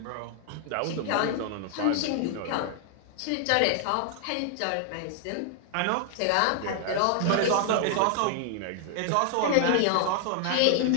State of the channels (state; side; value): different; both; correlation 0.00